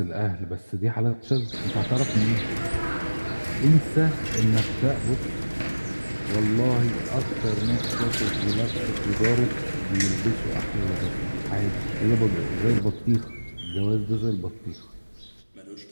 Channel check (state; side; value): inverted; both; correlation -1.00